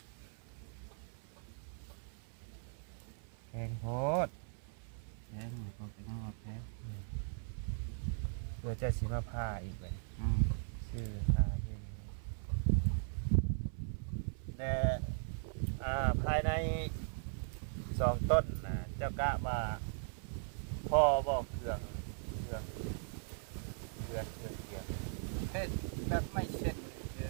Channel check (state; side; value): silent; left; 52 dB below the other